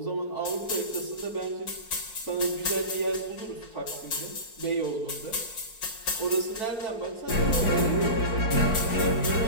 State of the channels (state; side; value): late; right; 4.5 ms